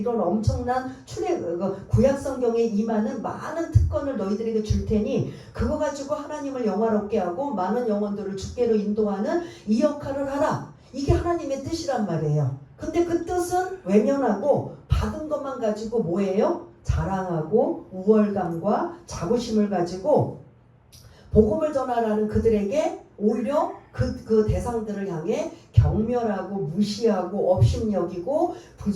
엄청난 구약 성경에 임하는 많은 특권을 너희들에게 줄 테니 그거 가지고 하나님을 영화롭게 하고 많은 영혼들을 주께로 인도하는 이 역할을 하라. 이게 하나님의 뜻이란 말이에요. 근데 그 뜻은 외면하고 받은 것만 가지고 뭐예요? 자랑하고 우월감과 자부심을 가지고 복음을 전하라는 그들에게 오히려 그 대상들을 향해 경멸하고 무시하고 업신여기고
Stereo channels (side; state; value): both; identical; correlation 1.00